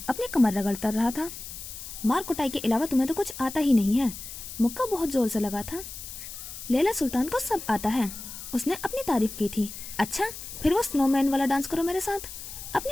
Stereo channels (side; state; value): left; noise; hiss, 11 dB below the sound